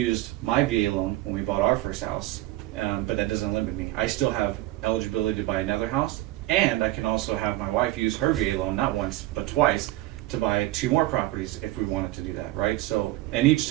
my VA loan when we bought our first house, but that doesn't limit me. I still have eligibility to buy another house, and I can also have my wife use her VA loan, not once, but twice, to buy 2 more properties if we wanted to do that, right? So, and each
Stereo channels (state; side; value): quieter; left; 17.2 dB